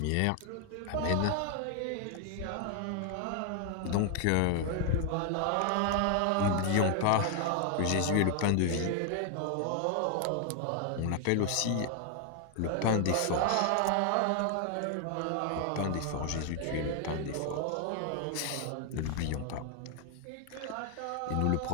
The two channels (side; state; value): both; different; correlation 0.00